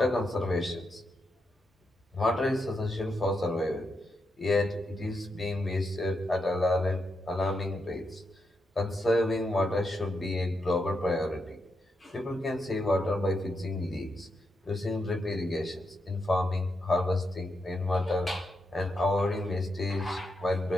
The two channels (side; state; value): both; normal; correlation 0.83